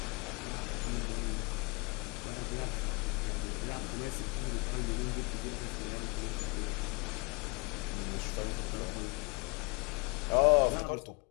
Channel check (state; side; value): quieter; right; 29.8 dB